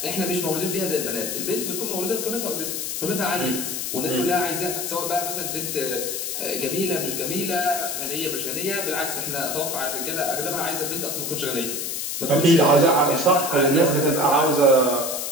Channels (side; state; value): left; noise; hiss, 3 dB below the sound